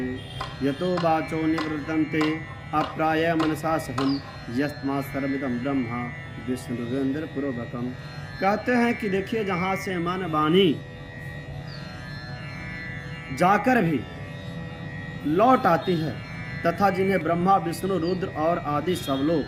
यतो वाचो निवृत्तन्ते अप्राय मनसा सहम यस्मा सर्वमिदं ब्रह्मा विष्णुरेंद्र पूर्वकम। कहते हैं कि देखिए जहाँ से मन वाणी जाकर भी लौट आती है तथा जिन्हें ब्रह्मा विष्णु रुद्र और आदि सब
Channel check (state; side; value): identical; both; correlation 1.00